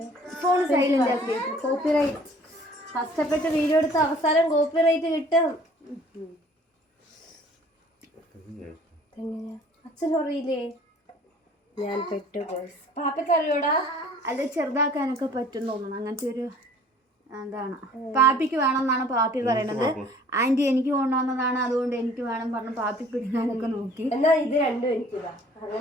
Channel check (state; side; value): normal; both; correlation 0.53